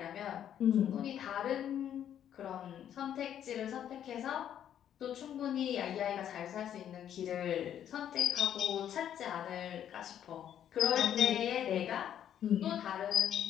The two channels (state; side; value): quieter; right; 10.0 dB